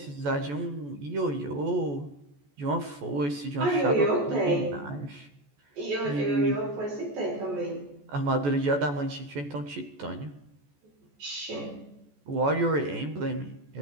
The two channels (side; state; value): left; late; 14 ms